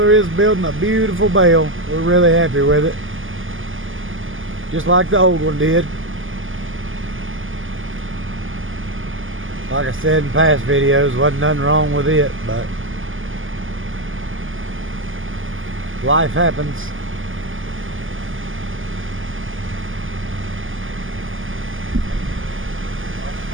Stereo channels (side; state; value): left; late; 0.58 ms